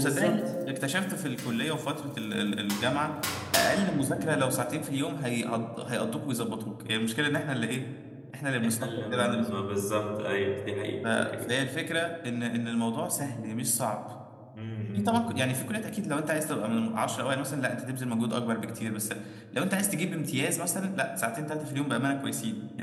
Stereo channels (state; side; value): identical; both; correlation 1.00